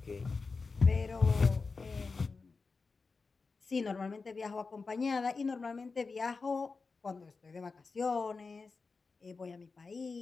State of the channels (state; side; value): quieter; right; 4.4 dB